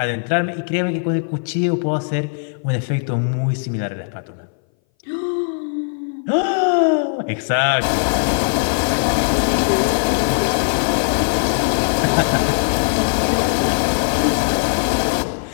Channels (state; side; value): silent; right; 61 dB below the other